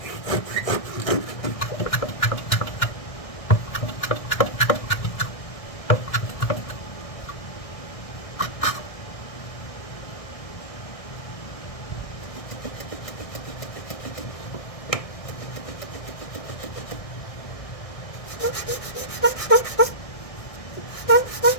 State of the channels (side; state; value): right; late; 1.6 ms